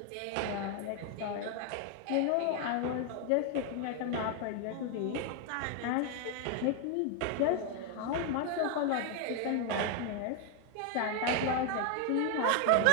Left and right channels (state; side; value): different; both; correlation 0.00